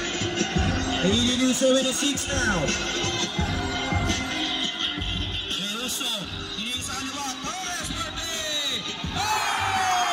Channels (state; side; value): identical; both; correlation 1.00